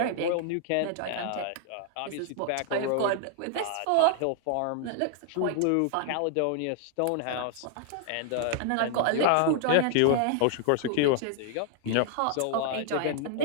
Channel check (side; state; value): both; different; correlation 0.00